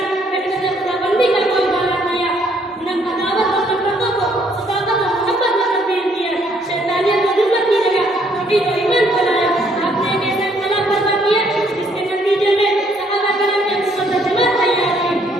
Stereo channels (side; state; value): both; normal; correlation 0.67